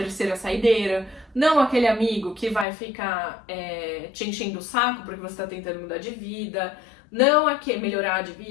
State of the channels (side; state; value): right; drops out; at 2.7 s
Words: saideira, não aquele amigo que vai ficar te enchendo o saco porque você está tentando mudar de vida, não aquele melhorar de